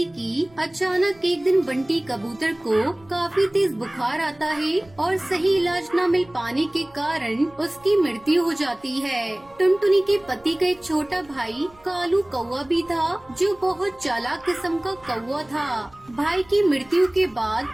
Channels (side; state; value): right; noise; rumble, 28 dB below the sound